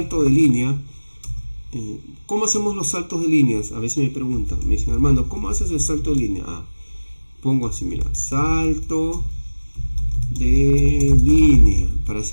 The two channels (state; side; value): inverted; both; correlation -1.00